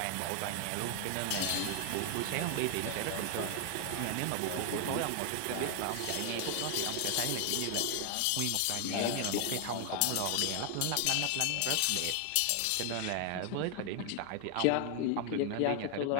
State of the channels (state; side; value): different; both; correlation 0.00